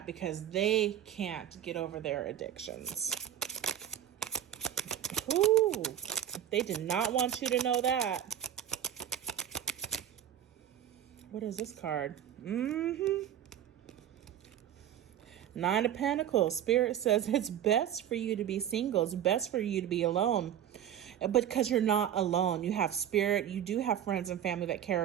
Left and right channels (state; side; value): quieter; left; 10.5 dB